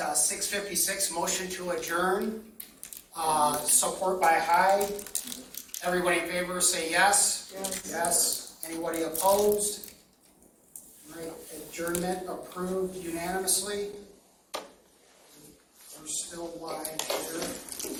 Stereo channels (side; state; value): both; identical; correlation 1.00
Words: motion to adjourn. Support by Hyde. Everybody in favor say yes. Yes. Yes. Anybody opposed? Right, adjournment approved unanimously. We're still live here.